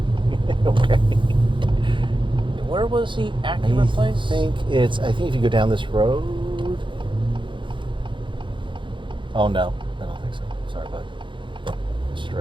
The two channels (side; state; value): left; late; 0.24 ms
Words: Okay. Where was the Acura place? I think if you go down this road. Oh no, I don't think so. Sorry, bud.